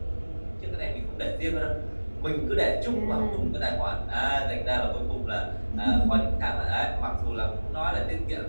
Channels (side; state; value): both; inverted; correlation -1.00